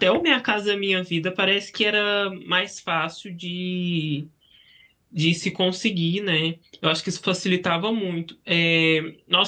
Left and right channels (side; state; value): both; identical; correlation 1.00